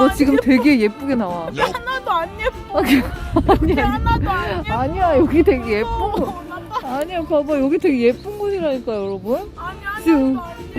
지금 되게 예쁘게 나와. 하나도 안 예뻐. 아니야. 하나도 안 예뻐. 아니야, 여기 되게 예쁜 거. 아니야, 봐봐. 여기 되게 예쁜 곳이라니까, 여러분. 아니, 지금 하나도 안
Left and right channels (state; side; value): identical; both; correlation 1.00